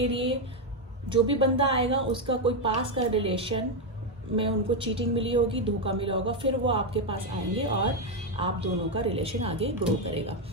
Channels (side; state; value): both; normal; correlation 0.05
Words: लिए जो भी बंदा आएगा उसका कोई पास का रिलेशन में उनको चीटिंग मिली होगी, धोखा मिला होगा, फिर वो आपके पास आएंगे और आप दोनों का रिलेशन आगे ग्रो करेगा।